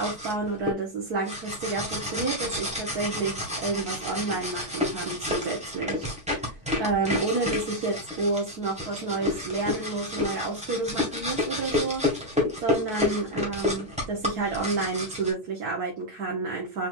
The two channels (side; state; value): both; normal; correlation -0.03